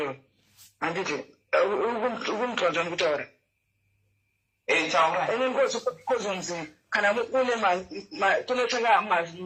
handiti ukumutwadza ndikutaura kozonzi kana une kunotanga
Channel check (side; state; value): both; identical; correlation 1.00